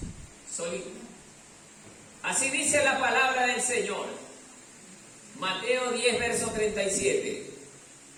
Solita. Así dice la palabra del Señor. Mateo 10, verso 37.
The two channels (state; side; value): identical; both; correlation 1.00